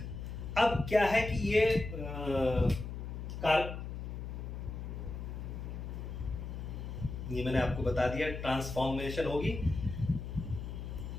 अब क्या है कि ये ये मैंने आपको बता दिया, ट्रांसफॉर्मेशन होगी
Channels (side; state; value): left; noise; hum, 7 dB below the sound